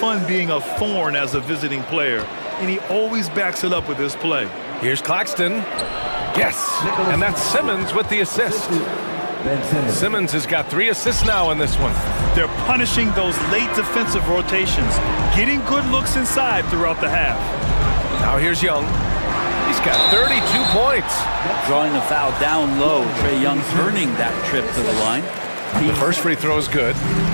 being a thorn as a visiting player, and he always backs it up with his play. Here's Claxton. Yes, and that's Simmons with the assist. Simmons has got 3 assists now in this one. They're punishing those late defensive rotations, getting good looks inside throughout the half. Now here's Young. He's got 32 points. Drawing the foul down low. Trae Young earning that trip to the line. The first free throw is good.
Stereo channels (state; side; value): inverted; both; correlation -1.00